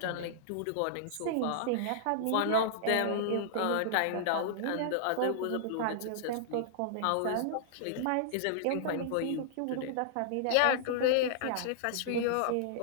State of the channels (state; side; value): different; both; correlation -0.01